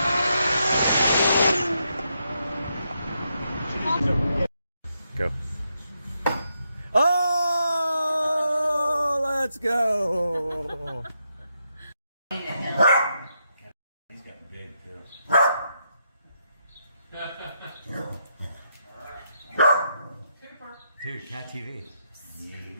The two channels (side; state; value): both; inverted; correlation -0.81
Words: Go. Oh, let's go. He's got big too. Dude, Cat TV.